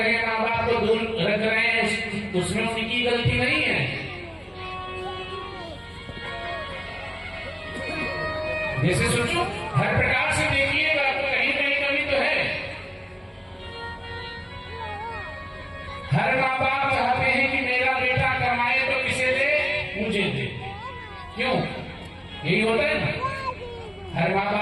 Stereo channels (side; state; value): both; identical; correlation 1.00